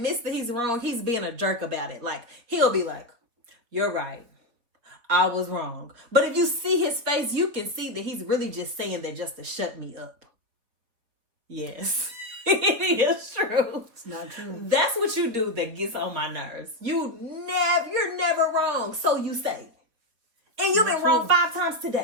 that he's wrong, he's being a jerk about it. Like, he'll be like, you're right. I was wrong. But if you see his face, you can see that he's really just saying that just to shut me up. Yes. It is true. It's not true. That's what you do that gets on my nerves. You're never wrong. So you say. And you've been wrong 5 times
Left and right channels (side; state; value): left; late; 4.2 ms